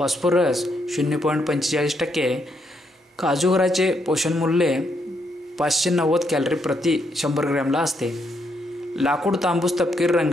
0.45%. काजूगराचे पोषणमूल्य 590 कॅलरी प्रति 100 ग्रॅमला असते. लाकूड तांबूस तपकिरी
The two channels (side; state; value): both; normal; correlation 0.76